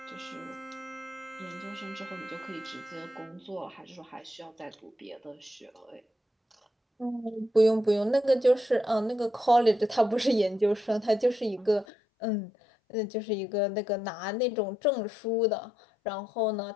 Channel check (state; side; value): drops out; right; at 11.9 s